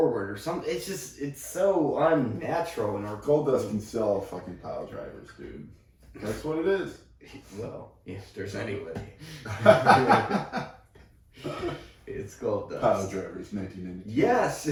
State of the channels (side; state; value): both; identical; correlation 1.00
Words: or something. It's so unnatural. And Goldust can sell fucking pile drivers, dude. That's what it is. Well, if there's anybody. It's Goldust. Pile drivers, 1992. Yes.